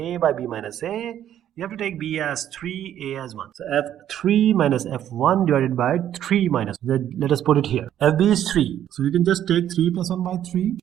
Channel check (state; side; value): quieter; left; 10.9 dB